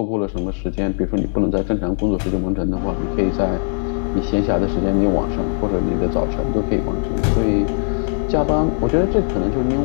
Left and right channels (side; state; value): right; silent; 66 dB below the other